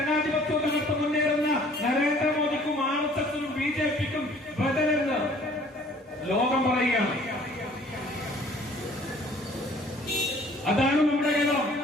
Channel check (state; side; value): normal; both; correlation 0.55